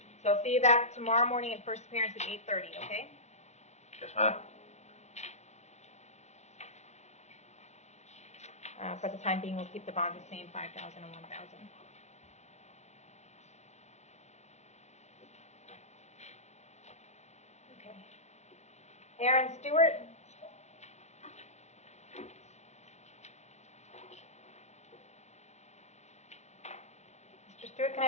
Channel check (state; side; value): late; right; 0.32 ms